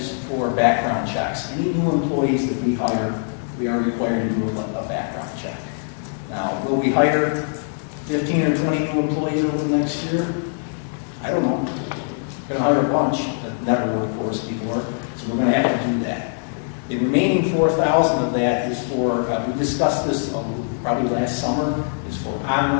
for background checks. Any new employees that we hire, we are required to do a background check. Now, will we hire 15 or 20 new employees over the next year? I don't know. We're gonna hire a bunch that never worked for us before, so we're gonna have to do that. The remaining 4,000 of that is for, we discussed this probably last summer, is for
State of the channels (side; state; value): right; silent; digital silence